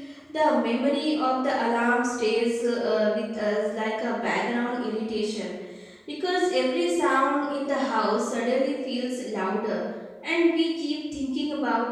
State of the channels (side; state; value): both; identical; correlation 1.00